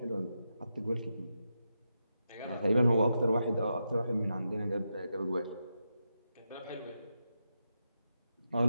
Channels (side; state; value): both; inverted; correlation -0.86